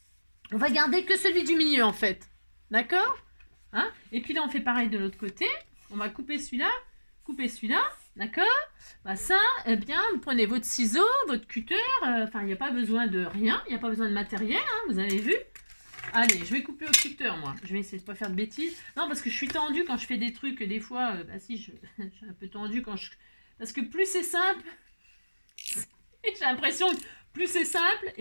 on va garder que celui du milieu, en fait. D'accord? Hein? Et puis là, on fait pareil de l'autre côté. On va couper celui-là, d'accord? Bah ça, eh bien, vous prenez votre ciseau, votre cutter. Enfin, il n'y a pas besoin de rien. Il n'y a pas besoin de matériel, hein, vous avez vu? Allez, je vais couper au cutter, moi. Je vais essayer de ne pas faire de bêtises. Non, parce que je suis tendue quand je fais des trucs. Des fois, bah si, je suis un peu tendue quand je... Parce que plus c'est simple, j'ai l'impression que plus c'est simple,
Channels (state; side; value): inverted; both; correlation -1.00